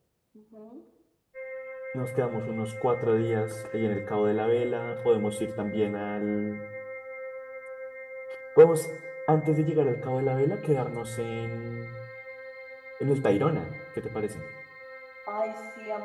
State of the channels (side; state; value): both; identical; correlation 1.00